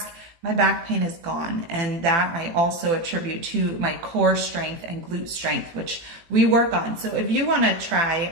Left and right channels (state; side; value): late; left; 18 ms